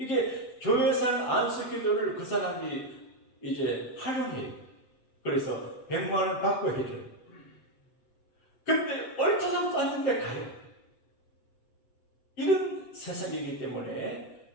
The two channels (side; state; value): right; late; 7.8 ms